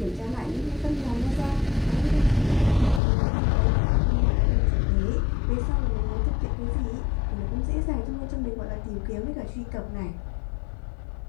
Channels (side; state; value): right; drops out; at 3.0 s